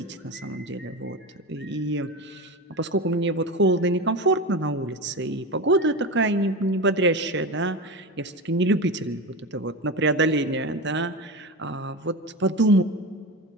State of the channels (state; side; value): normal; both; correlation 0.23